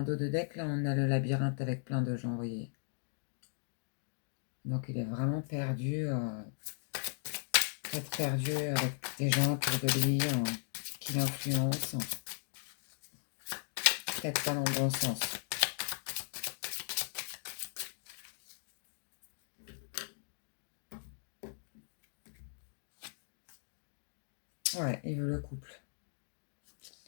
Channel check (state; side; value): silent; right; digital silence